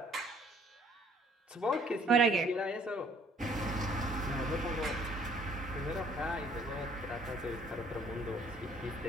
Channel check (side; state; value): both; normal; correlation 0.60